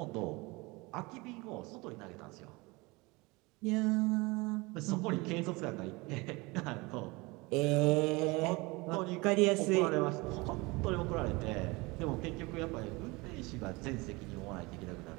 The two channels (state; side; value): quieter; left; 24.5 dB